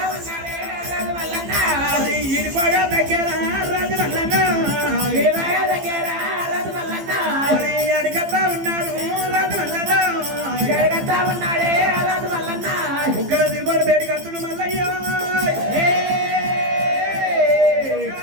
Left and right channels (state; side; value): late; left; 15 ms